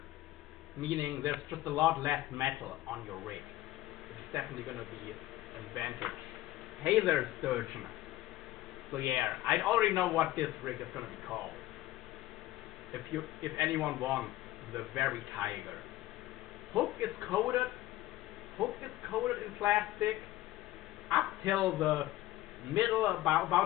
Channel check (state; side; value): quieter; right; 15.9 dB